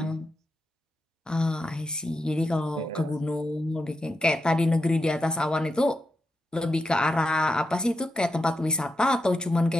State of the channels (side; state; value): both; normal; correlation 0.87